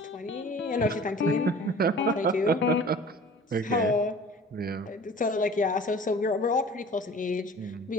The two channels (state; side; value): normal; both; correlation 0.45